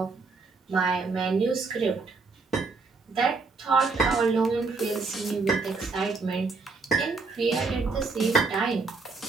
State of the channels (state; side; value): quieter; left; 4.2 dB